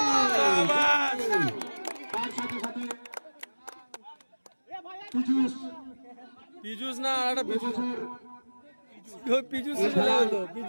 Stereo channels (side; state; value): both; inverted; correlation -1.00